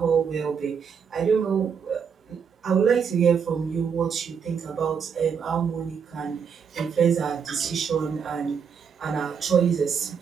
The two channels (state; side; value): quieter; left; 6.7 dB